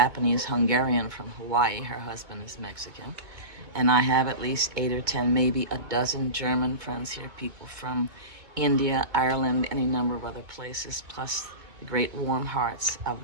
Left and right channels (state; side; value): late; left; 2.2 ms